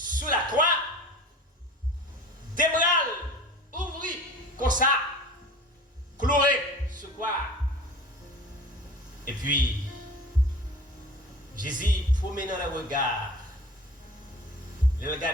la croix, des bras ouvris, comme ça, cloué sur quoi. Et puis, Jésus promenait dans le regard, il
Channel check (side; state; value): both; normal; correlation 0.40